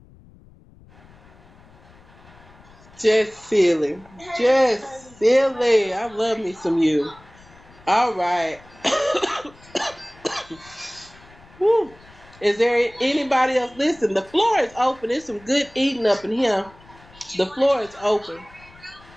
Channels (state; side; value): noise; left; rumble, 25 dB below the sound